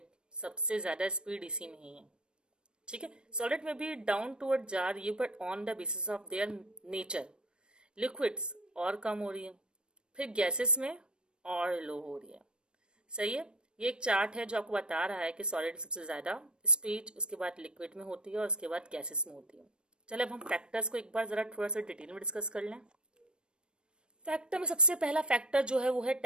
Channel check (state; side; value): late; left; 0.054 ms